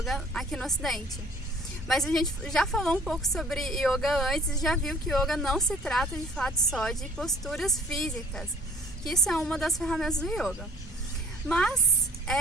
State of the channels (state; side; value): normal; both; correlation 0.49